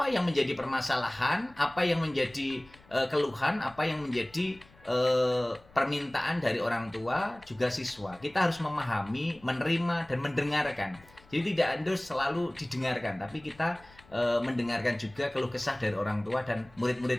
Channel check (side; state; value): left; noise; rumble, 26 dB below the sound